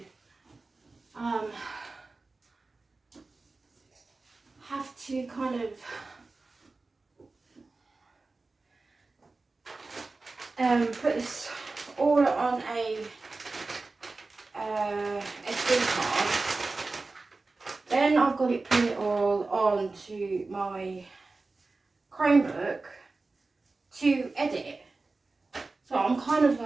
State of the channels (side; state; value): left; quieter; 3.6 dB